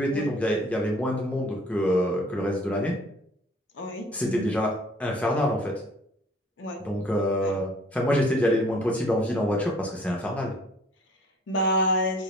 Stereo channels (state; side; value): normal; both; correlation 0.54